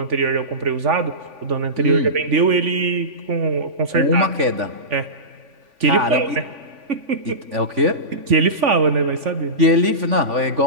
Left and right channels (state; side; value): late; left; 3.5 ms